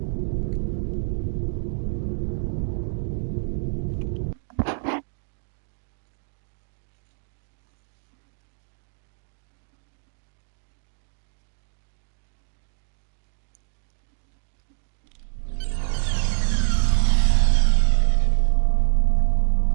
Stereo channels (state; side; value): silent; left; digital silence